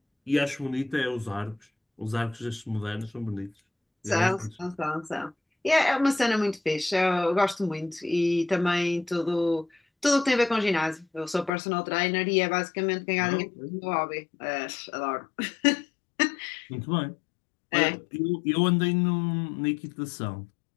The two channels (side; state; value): right; drops out; at 11.5 s